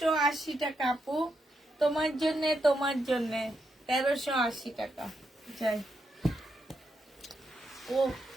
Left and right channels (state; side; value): normal; both; correlation 0.82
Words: টাকা আপু, তোমার জন্য, তোমার জন্য 1380 টাকা। যাই। ও,